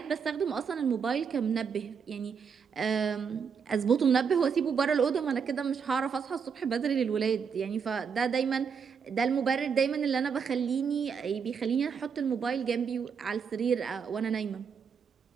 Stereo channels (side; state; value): left; quieter; 6.4 dB